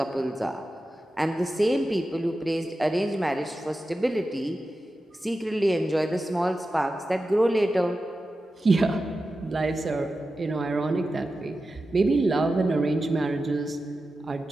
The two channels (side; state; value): both; normal; correlation 0.92